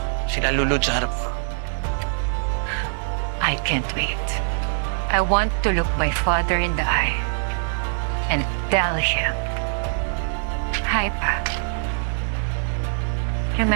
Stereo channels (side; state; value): left; silent; 60 dB below the other